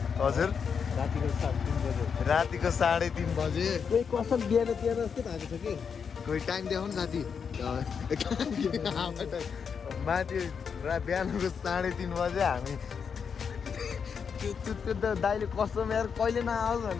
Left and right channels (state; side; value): quieter; right; 6.5 dB